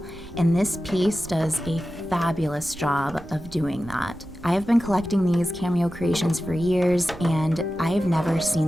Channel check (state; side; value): noise; right; rumble, 18 dB below the sound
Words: and this piece does a fabulous job of doing that. I have been collecting these Cameo creations for years, and I've never seen